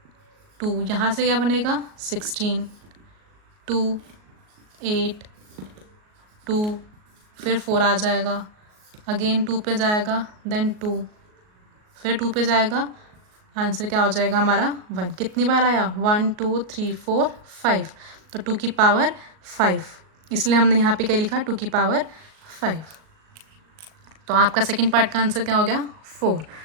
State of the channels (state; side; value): late; left; 38 ms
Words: 2 यहाँ से क्या बनेगा 16, 2 8, 2 फिर 4 आ जाएगा, अगेन 2 पे जाएगा, देन 2 फिर 2 पे जाएगा, आंसर क्या हो जाएगा हमारा 1। कितनी बार आया 1 2 3 4 5, तो 2 की पावर 5, इसलिए हमने यहाँ पे क्या लिखा 2 की पावर 5। तो आपका सेकंड पार्ट का आंसर क्या हो गया 4।